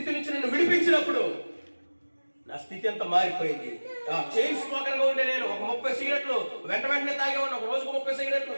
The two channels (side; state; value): both; inverted; correlation -1.00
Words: నుంచి నన్ను విడిపించినప్పుడు నా స్థితి అంతా మారిపోయింది. చైన్ స్మోకర్ గా ఉండే నేను ఒక 30 సిగరెట్లు వెంటనే తాగేవాడిని. ఒక రోజుకు 30 సిగరెట్లు,